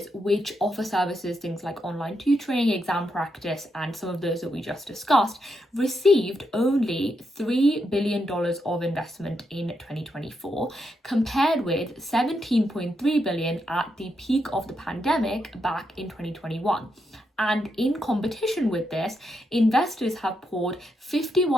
which offer services, things like online tutoring, exam practice, and some of those that we just discussed, received only $3 billion of investment in 2024, compared with $17.3 billion at the peak of the pandemic back in 2021. And in competition with this, investors have poured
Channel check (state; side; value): normal; both; correlation 0.82